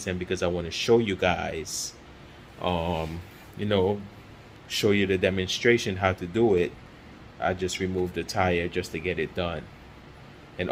and because I want to show you guys, you know, show you the demonstration how to do it, I just removed the tire just to get it done. And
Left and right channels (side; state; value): both; identical; correlation 1.00